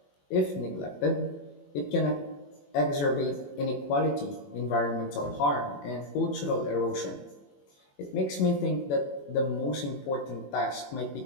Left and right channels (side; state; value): right; late; 21 ms